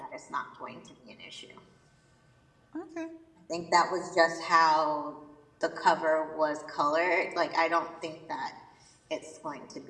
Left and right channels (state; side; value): identical; both; correlation 1.00